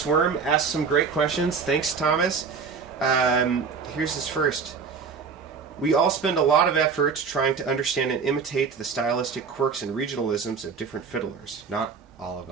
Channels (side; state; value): left; quieter; 5.6 dB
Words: Worm asked some great questions. Thanks, Thomas. Here's his first. We all spend a lot of effort trying to understand and imitate the stylistic quirks and regionalisms of different fiddlers. Not all of